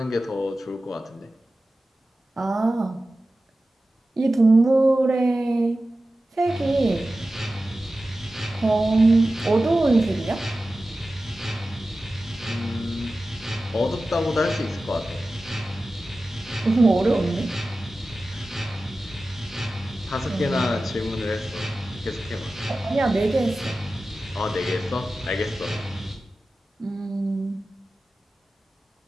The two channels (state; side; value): normal; both; correlation 0.95